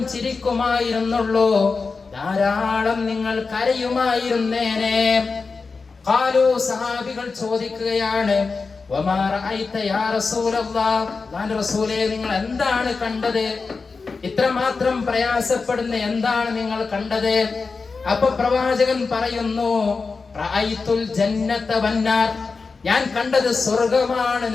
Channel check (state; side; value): quieter; right; 4.5 dB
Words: ചിരിക്കുമായിരുന്നുള്ളൂ, ധാരാളം നിങ്ങൾ കരയുമായിരുന്നേനെ. ഖാലൂ, സഹാബികൾ ചോദിക്കുകയാണ്, വമാ റഅയ്ത യാ റസൂലല്ലാഹ്, അല്ലാഹുവിന്റെ റസൂലേ നിങ്ങൾ എന്താണ് കണ്ടത്? ഇത്രമാത്രം പ്രയാസപ്പെടുന്ന എന്താണ് നിങ്ങൾ കണ്ടത്? അപ്പൊ പ്രവാചകൻ പറയുന്നു, റഅയ്തുൽ ജന്നത വന്നാർ, ഞാൻ കണ്ടത് സ്വർഗമാണ്,